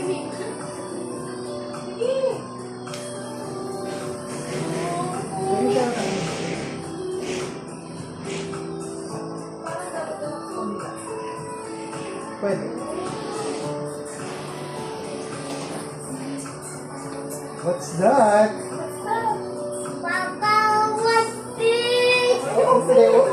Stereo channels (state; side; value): identical; both; correlation 1.00